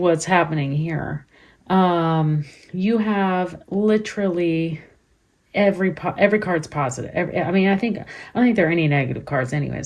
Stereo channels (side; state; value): both; identical; correlation 1.00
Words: happening here. You have literally every card's positive. I don't think there are any negative cards